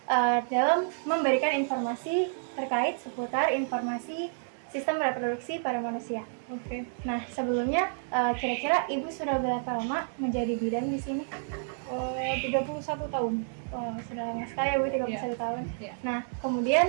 dalam memberikan informasi terkait seputar informasi sistem reproduksi pada manusia. Nah, sebelumnya kira-kira Ibu sudah berapa lama menjadi bidan di sini? 31 tahun. Oh, sudah lama sekali ya Bu, 31 tahun. Iya. Nah,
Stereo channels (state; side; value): silent; left; digital silence